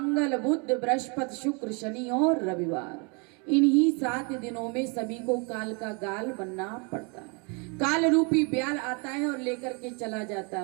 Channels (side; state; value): left; quieter; 33.3 dB